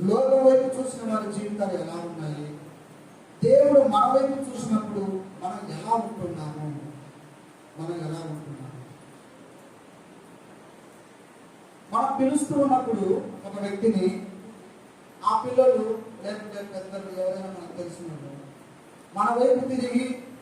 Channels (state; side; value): identical; both; correlation 1.00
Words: లోకం వైపు చూసిన వారి జీవితాలు ఎలా ఉన్నాయి, దేవుడు మన వైపు చూసినప్పుడు మనం ఎలా ఉంటున్నాము, మనం పిలుస్తూ ఉన్నప్పుడు ఒక వ్యక్తిని, ఆ పిల్లలు లేకుంటే పెద్దలు ఎవరైనా మనకు తెలిసినప్పుడు మన వైపు తిరిగి